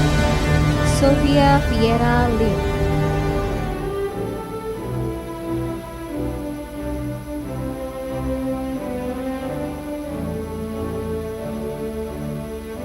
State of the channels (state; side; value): identical; both; correlation 1.00